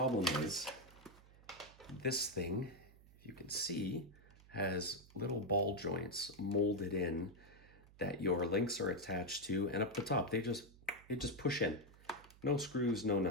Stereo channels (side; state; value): right; noise; hum, 23 dB below the sound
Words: is this thing, if you can see, has little ball joints molded in that your links are attached to, and up the top, they just push in. No screws, no